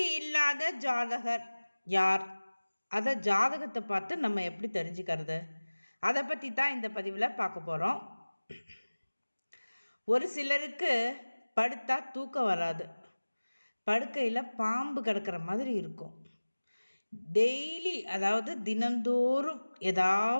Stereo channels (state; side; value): inverted; both; correlation -1.00